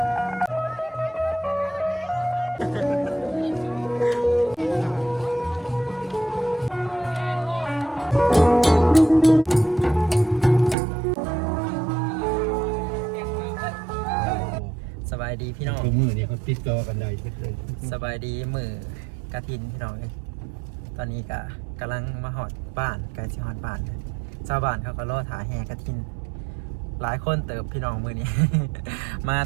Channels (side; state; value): left; drops out; at 10.8 s